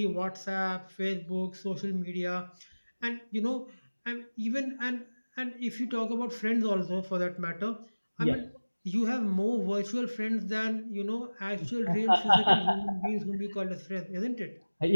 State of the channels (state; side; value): inverted; both; correlation -1.00